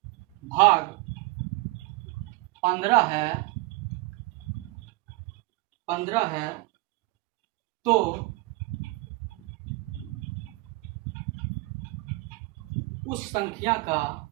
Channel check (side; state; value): left; quieter; 21.6 dB